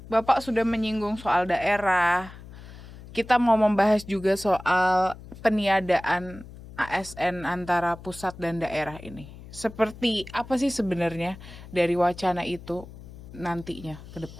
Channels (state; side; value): noise; left; hum, 16 dB below the sound